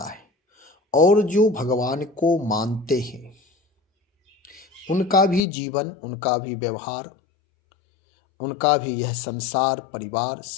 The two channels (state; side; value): drops out; right; at 5.5 s